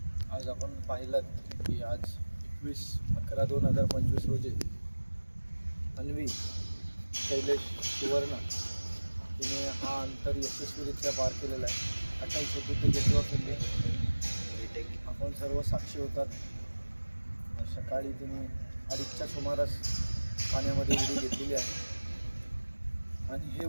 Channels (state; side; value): inverted; both; correlation -1.00